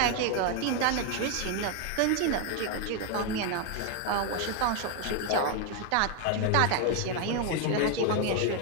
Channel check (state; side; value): different; both; correlation 0.01